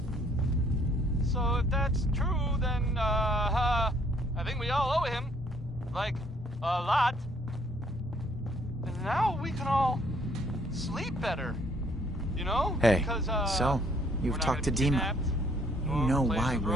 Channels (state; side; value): normal; both; correlation 0.64